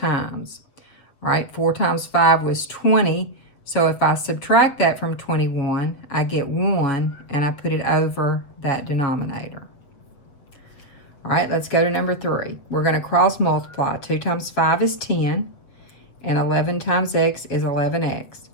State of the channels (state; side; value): late; right; 7.4 ms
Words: All right, 4 times 5 was 20. So if I subtract that from 21, I get 1, and I put it over that denominator. All right, let's go to number 3. We're going to cross multiply. 2 times 5 is 10, and 11 times x is 11x.